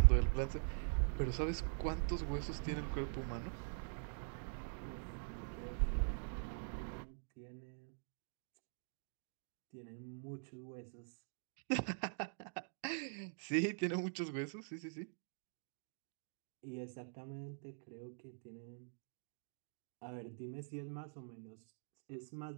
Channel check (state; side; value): silent; left; digital silence